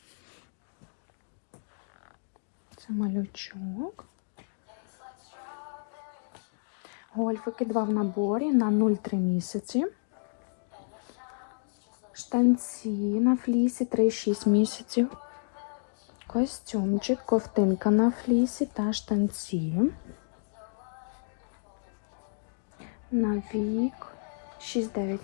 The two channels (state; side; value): silent; right; digital silence